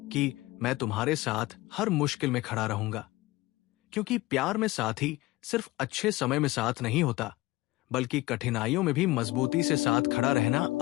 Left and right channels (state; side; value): quieter; right; 19.1 dB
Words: कि मैं तुम्हारे साथ हर मुश्किल में खड़ा रहूंगा, क्योंकि प्यार में साथी सिर्फ अच्छे समय में साथ नहीं होता बल्कि कठिनाइयों में भी मजबूती से साथ खड़ा रहना